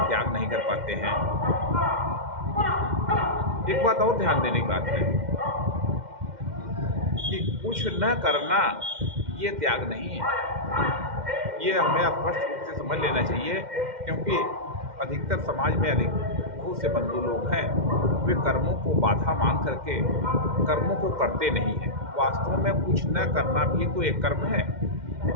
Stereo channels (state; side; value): late; left; 2.1 ms